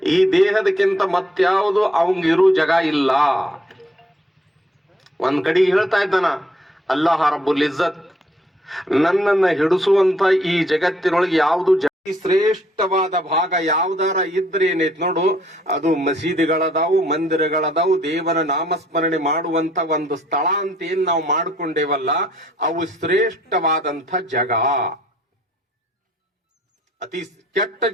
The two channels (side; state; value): both; normal; correlation 0.66